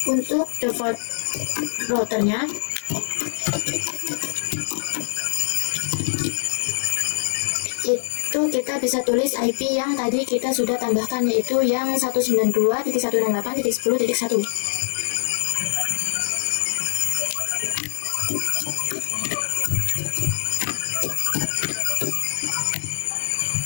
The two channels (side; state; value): right; silent; 63 dB below the other